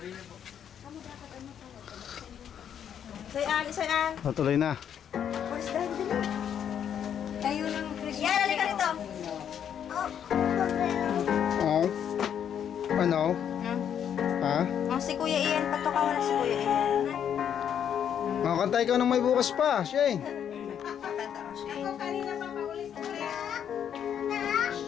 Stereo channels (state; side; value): quieter; right; 8.9 dB